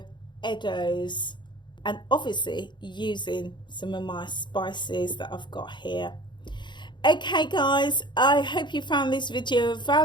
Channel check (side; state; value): right; late; 0.22 ms